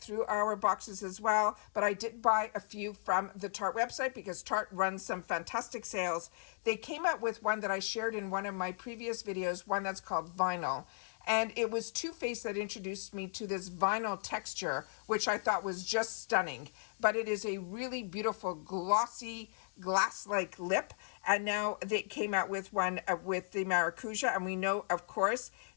through our boxes as well, but I did buy a few from the Tarte website because Tarte runs some fantastic sales. They came out with one that I shared in one of my previous videos, one that's called Vinyl. And it was Too Faced that introduced me to this vinyl texture, which I thought was just stunning. But it is a really beautiful, glossy, glass-like lip. And now they came out with one with the Maracuja. And we know, of course,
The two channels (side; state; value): right; silent; digital silence